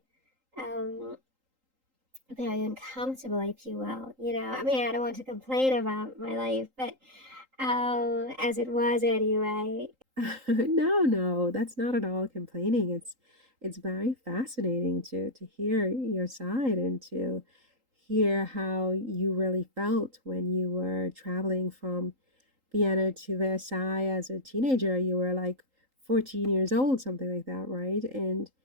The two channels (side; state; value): left; late; 3.8 ms